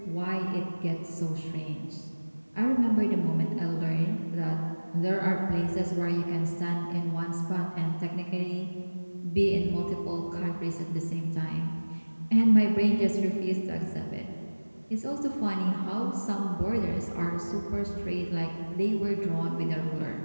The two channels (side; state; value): both; inverted; correlation -1.00